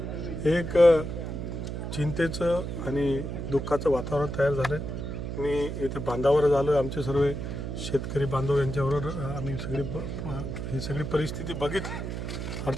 एक चिंतेचं आणि दुःखाचं वातावरण तयार झालं. मी इथे बांधावर झालो. आमचे सर्व शेतकरी बांधव यांच्याबरोबर आम्ही ही सगळी परिस्थिती बघितली.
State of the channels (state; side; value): noise; right; hum, 5 dB below the sound